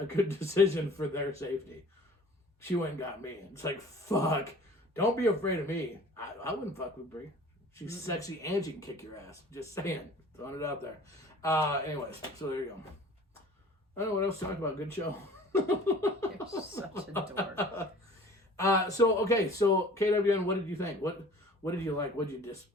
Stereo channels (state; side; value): normal; both; correlation 0.47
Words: good decision for their safety. She went and got me. It's like, fuck. Don't be afraid of me. I wouldn't fuck with Bree. She's sexy and she can kick your ass. Just saying. Throwing it out there. Anyways, so there you go. I don't know what else to talk about. Good show. You're such a dork. So KWN, what did you think? What did you like? What